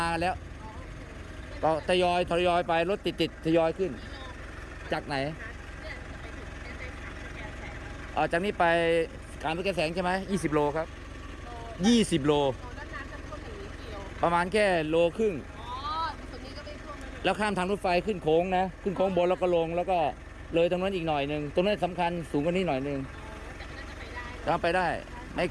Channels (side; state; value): both; identical; correlation 1.00